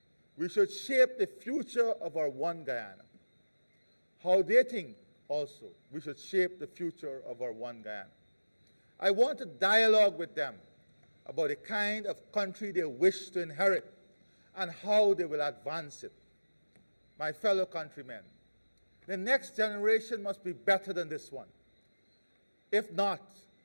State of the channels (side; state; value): both; inverted; correlation -1.00